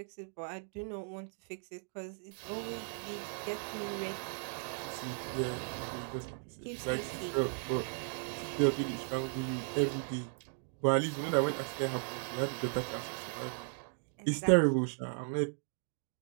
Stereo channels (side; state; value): left; silent; 53 dB below the other